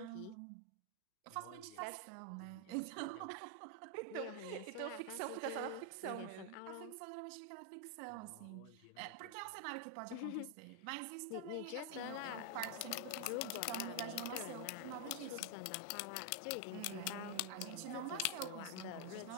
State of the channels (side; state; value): both; different; correlation 0.00